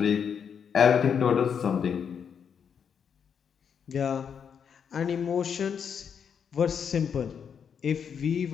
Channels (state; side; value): quieter; right; 7.3 dB